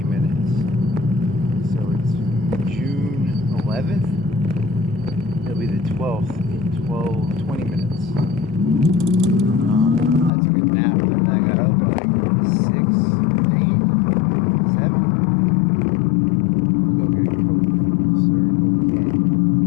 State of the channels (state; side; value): drops out; right; at 10.3 s